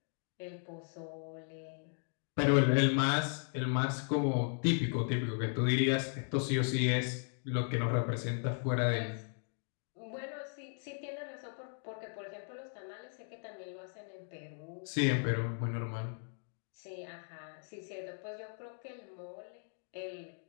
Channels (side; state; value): right; silent; 53 dB below the other